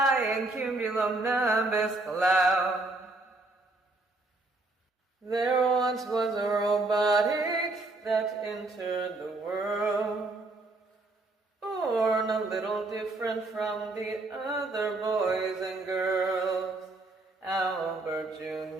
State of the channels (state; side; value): quieter; left; 3.0 dB